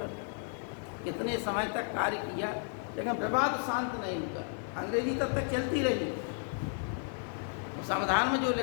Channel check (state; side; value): silent; right; 56 dB below the other